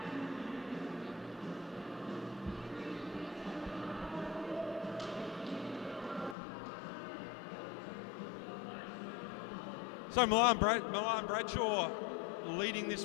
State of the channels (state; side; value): drops out; right; at 6.4 s